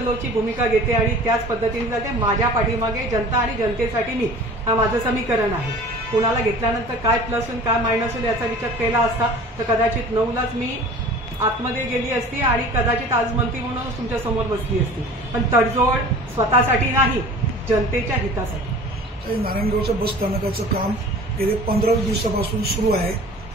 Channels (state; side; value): normal; both; correlation 0.43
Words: भूमिका घेते आणि त्याच पद्धतीने जाते. माझ्या पाठीमागे जनता आणि जनतेसाठी मी, हा माझं समीकरण आहे. कोणाला घेतल्यानंतर काय प्लस होईल काय मायनस होईल याचा विचार केला असता तर कदाचित 9लाच मी आतमध्ये गेली असती आणि कदाचित आज मंत्री म्हणून तुमच्या समोर बसली असती. पण तडजोड स्वतःसाठी नाही, जनतेच्या हितासाठी. नारायणगावच्या बस स्थानकाचं काम गेले 15 दिवसापासून सुरू आहे.